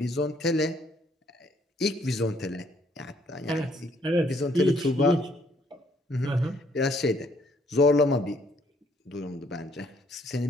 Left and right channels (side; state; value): both; normal; correlation 0.66